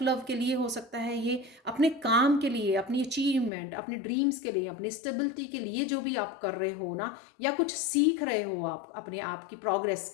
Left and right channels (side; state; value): right; drops out; at 3.5 s